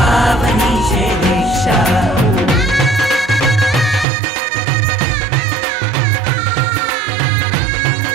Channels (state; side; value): drops out; left; at 4.0 s